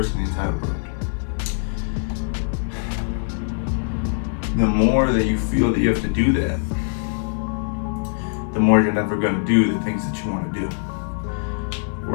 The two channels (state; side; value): silent; right; 56 dB below the other